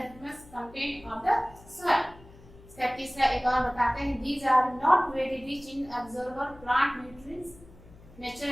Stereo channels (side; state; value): left; noise; hum, 22 dB below the sound